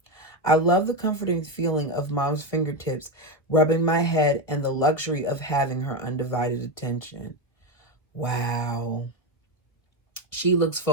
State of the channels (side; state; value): right; late; 1.5 ms